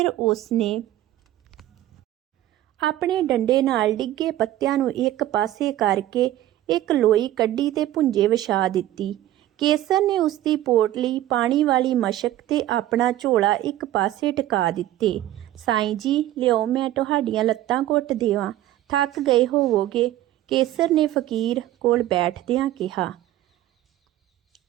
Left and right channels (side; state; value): left; quieter; 14.0 dB